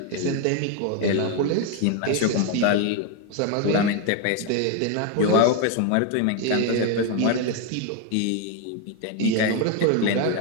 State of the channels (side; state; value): both; different; correlation 0.01